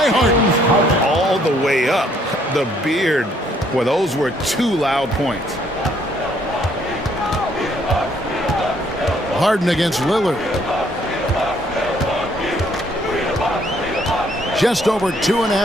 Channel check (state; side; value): normal; both; correlation 0.66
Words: Harden. All the way up. The beard. Well, those were 2 loud points. Harden against Lillard. Just over